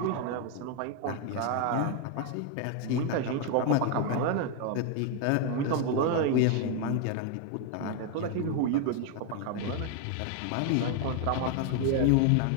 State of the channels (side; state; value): both; different; correlation 0.00